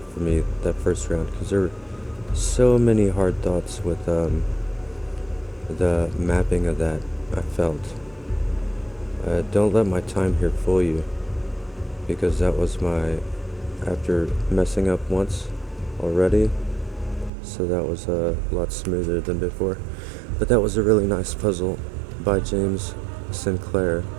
for me that first round, because there were so many hard thoughts with the mapping of that, I felt. Don't let my time here fool you, because that was after messing up once already, so that was a lot smoother than before. But that was a really nice puzzle by James Sinclair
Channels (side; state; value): left; drops out; at 17.3 s